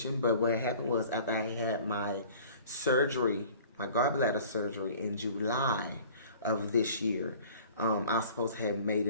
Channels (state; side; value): inverted; both; correlation -0.48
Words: but what happened was, after I had my surgery, my gallbladder surgery in July of this year, I was supposed to have made